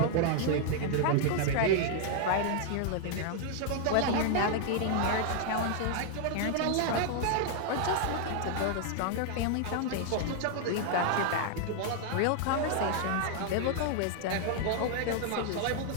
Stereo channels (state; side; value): different; both; correlation 0.00